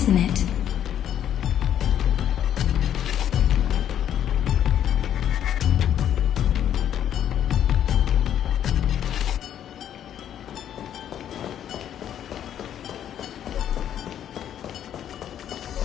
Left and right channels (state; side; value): quieter; right; 10.2 dB